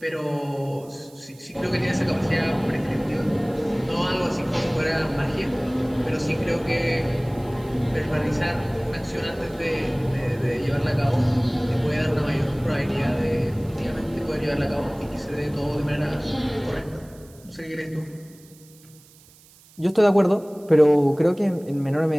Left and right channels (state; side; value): noise; right; hiss, 26 dB below the sound